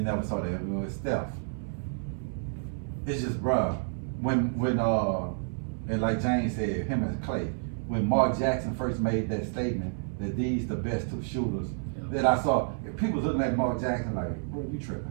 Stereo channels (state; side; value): silent; left; 58 dB below the other